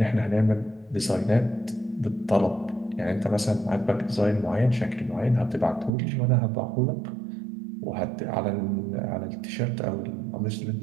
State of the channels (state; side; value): drops out; left; at 5.9 s